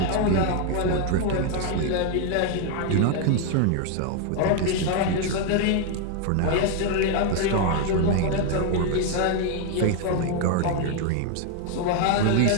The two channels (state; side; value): different; both; correlation 0.01